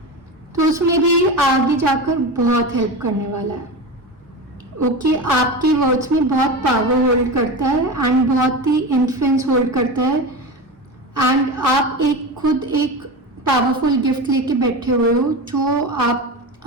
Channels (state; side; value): normal; both; correlation 0.24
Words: तो उसमें भी आगे जाकर बहुत हेल्प करने वाला है। ओके, आपके वर्ड्स में बहुत पावर होल्ड करता है एंड बहुत ही इन्फ्लुएंस होल्ड करता है। एंड आप खुद एक पावरफुल गिफ्ट लेके बैठे हुए हो जो आप